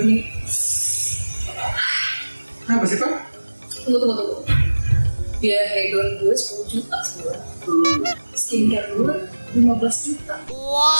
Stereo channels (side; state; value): both; inverted; correlation -1.00